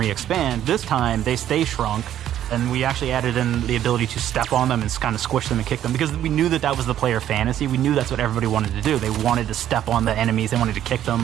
this time they stay shrunk, and we actually added in the ability to step on them and kind of squish them and kick them, because we knew that that was the player fantasy. We knew that's what everybody wanted to do. They wanted to step on the enemies, they wanted to kick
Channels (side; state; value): left; quieter; 11.3 dB